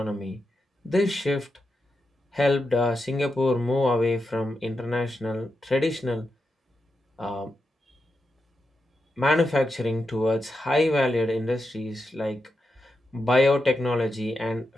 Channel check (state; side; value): normal; both; correlation 0.88